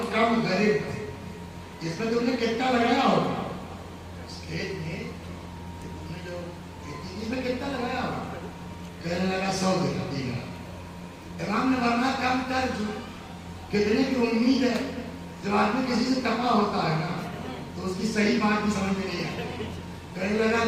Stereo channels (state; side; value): identical; both; correlation 1.00